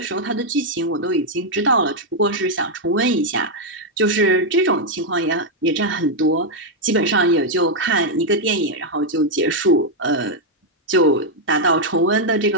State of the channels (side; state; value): both; normal; correlation -0.01